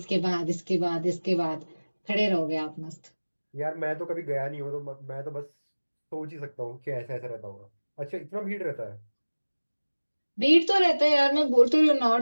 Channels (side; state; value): both; inverted; correlation -1.00